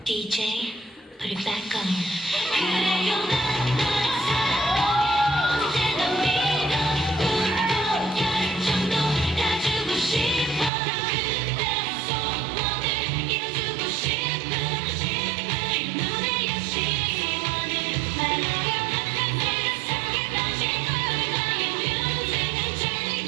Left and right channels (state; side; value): drops out; left; at 10.7 s